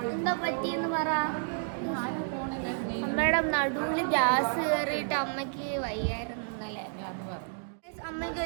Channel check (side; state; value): left; silent; digital silence